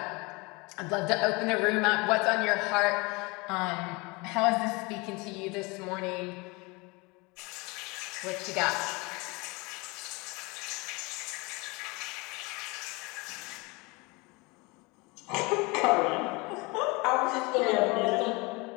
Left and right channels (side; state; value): right; quieter; 26.4 dB